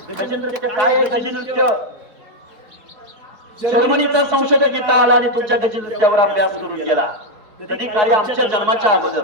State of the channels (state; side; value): late; left; 4.7 ms